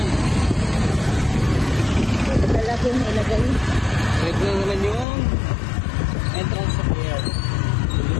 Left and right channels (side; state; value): right; drops out; at 5.1 s